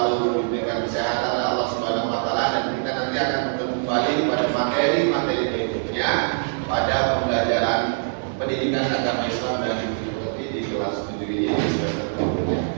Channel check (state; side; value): silent; left; digital silence